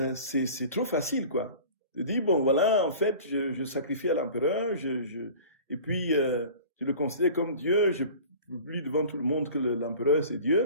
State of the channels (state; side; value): inverted; both; correlation -0.41